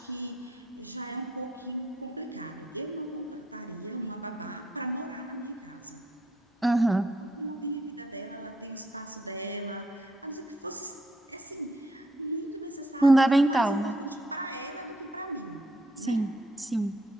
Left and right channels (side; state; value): both; normal; correlation 0.71